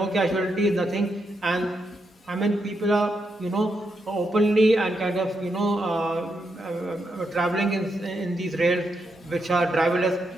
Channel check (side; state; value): both; normal; correlation 0.82